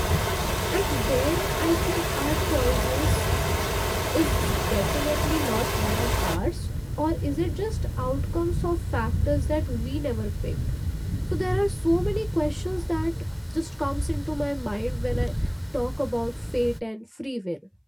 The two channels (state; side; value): identical; both; correlation 1.00